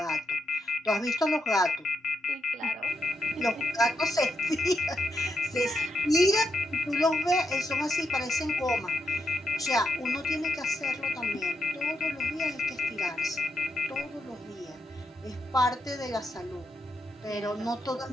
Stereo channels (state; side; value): normal; both; correlation 0.82